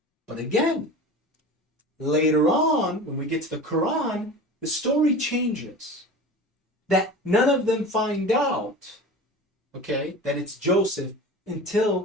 But again, later on, when we get to the Quran, the story changes. That none of them find out, okay, that it's Joseph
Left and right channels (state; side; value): normal; both; correlation 0.34